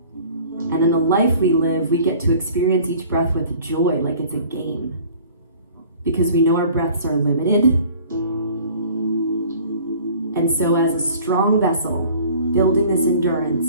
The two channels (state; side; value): inverted; both; correlation -0.49